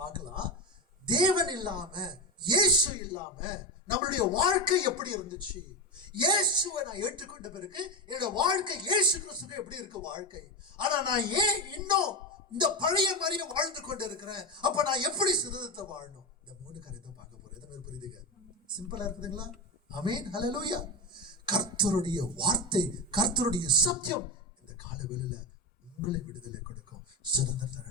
பார்க்கலாம். தேவன் இல்லாம, இயேசு இல்லாம நம்மளுடைய வாழ்க்கை எப்படி இருந்துச்சு, இயேசுவை நான் ஏற்றுக்கொண்ட பிறகு என்னோட வாழ்க்கை இயேசு கிறிஸ்துக்கு எப்படி இருக்கு வாழ்க்கை, ஆனா நான் ஏன் இன்னும் இந்த பழைய மாதிரியே வாழ்ந்து கொண்டு இருக்கிறேன், அப்ப நான் எப்படி சுதந்திரத்தை வாழணும், இந்த 3 காரியத்தை பார்க்க போறேன். எத்தனை பேர் புரியுதுங்க? சிம்பிளா இருக்குதுங்களா? ஆமென். ஹல்லேலூயா. கர்த்தருடைய வார்த்தை, கர்த்தருடைய சத்தியம் இந்த காலவெளியில உங்களை விடுதலை கொடுக்கும், சுதந்திரத்தை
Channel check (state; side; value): normal; both; correlation 0.15